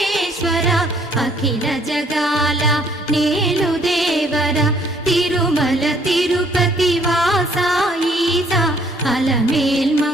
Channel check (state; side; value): normal; both; correlation 0.63